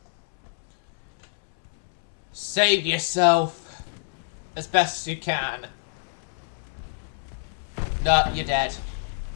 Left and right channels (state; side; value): silent; right; 61 dB below the other